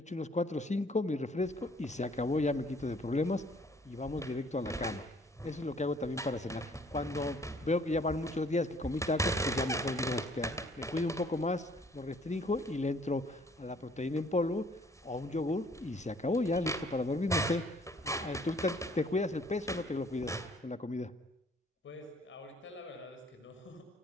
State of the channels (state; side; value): normal; both; correlation 0.59